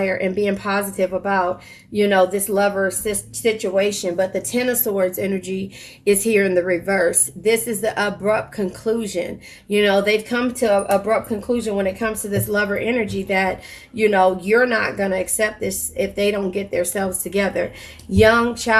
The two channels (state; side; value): identical; both; correlation 1.00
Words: and being positive about, this lover situation. But the Ten of Swords energy is here in the reverse. This is the abrupt conclusion. They've come to an abrupt conclusion when it comes to this lover energy that, you're not going to accept this if they don't get themselves together. Young